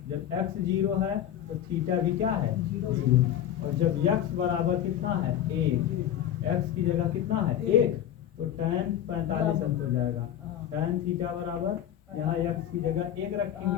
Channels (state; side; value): quieter; right; 10.8 dB